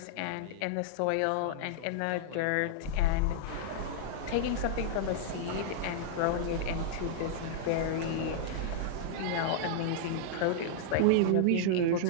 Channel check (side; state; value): both; different; correlation -0.01